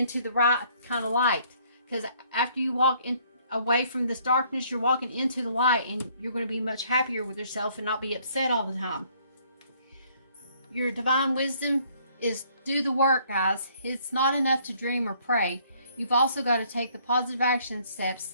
the right kind of light, because after you walk in away from this darkness, you're walking into the light, and you're going to be much happier with yourself and not be upset all the time. Your divine wisdom is do the work, guys. It's not enough to dream or pray. You've also got to take the positive action steps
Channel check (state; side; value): inverted; both; correlation -0.63